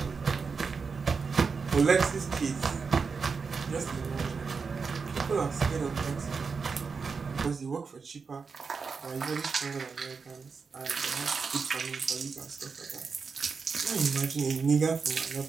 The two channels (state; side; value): quieter; left; 5.1 dB